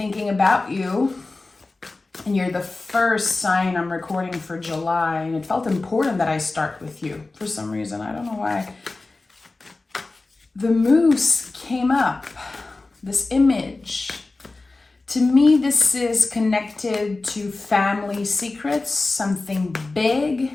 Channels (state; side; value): quieter; right; 3.4 dB